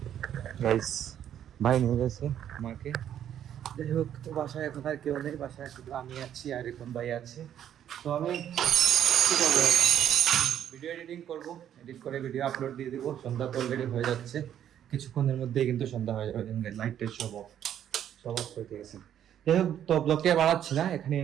গাইস ভাই নিয়ে গেছে মাকে। যাই হোক, তো বাসায় এখন আর কেউ নেই, বাসায় শুধু আমি আছি আর এখন ভাই আছে। তো আমি কি করবো, ভিডিও এডিটিং করবো, এডিট করে ভিডিও আপলোড দিয়ে দিব। সন্ধ্যা তো অলরেডি হয়ে যাচ্ছে, কিছুক্ষণের মধ্যেই কিন্তু সন্ধ্যা হয়ে যাবে। লাইটটা সব অফ করে দিয়েছে। যাই হোক, তো ব্লগটি বাড়াচ্ছি না, এখানে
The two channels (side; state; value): left; quieter; 10.2 dB